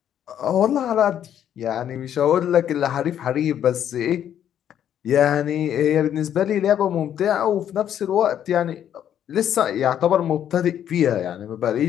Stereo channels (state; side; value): quieter; right; 10.0 dB